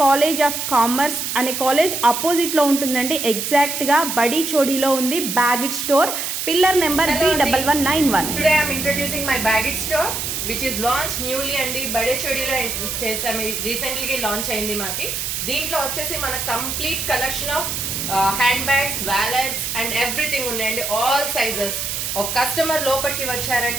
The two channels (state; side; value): noise; right; hiss, 3 dB below the sound